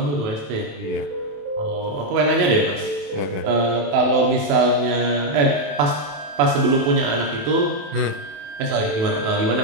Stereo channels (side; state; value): left; late; 27 ms